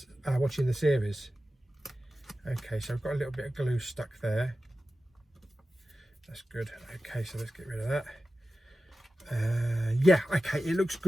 watching the series. Okay, so I've got a little bit of glue stuck there. That's good. Okay, so let's get rid of that. Yeah, okay, it looks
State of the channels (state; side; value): normal; both; correlation 0.94